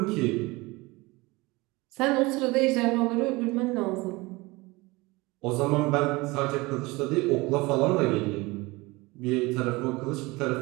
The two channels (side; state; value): left; quieter; 22.9 dB